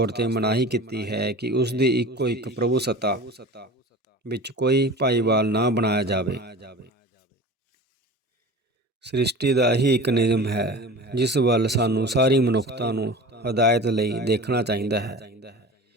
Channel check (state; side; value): normal; both; correlation 0.36